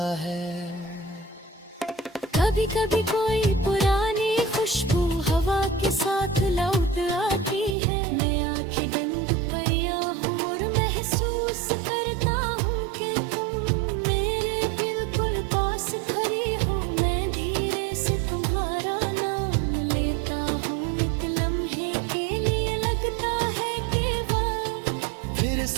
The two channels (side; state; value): left; drops out; at 7.8 s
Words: है। कभी कभी कोई पुरानी खुशबू हवा के साथ लौट आती है। मैं आंखें बंद परिया हूँ और महसूस करता हूँ कि तुम मेरे बिल्कुल पास खड़ी हो। मैं धीरे से तुम्हारा नाम लेता हूँ, एक लम्हे के लिए लगता है कि वक्त फिर